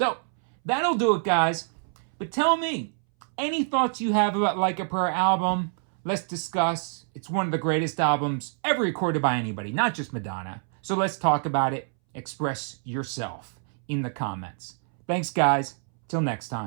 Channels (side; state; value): left; silent; 61 dB below the other